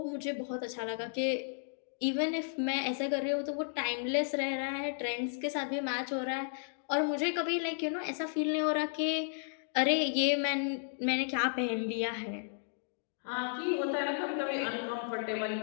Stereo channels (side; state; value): right; silent; digital silence